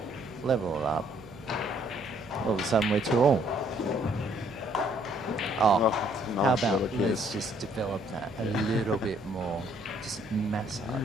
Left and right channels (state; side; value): noise; right; hum, 20 dB below the sound